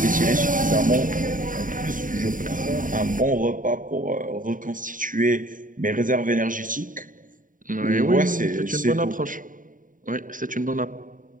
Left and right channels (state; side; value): late; left; 0.39 ms